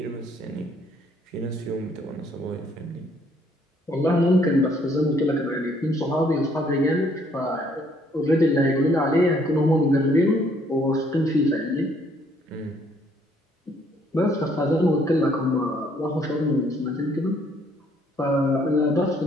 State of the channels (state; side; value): normal; both; correlation 0.65